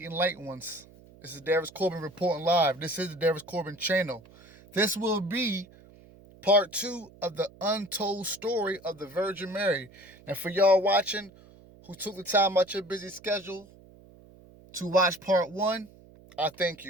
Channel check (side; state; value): right; noise; hum, 23 dB below the sound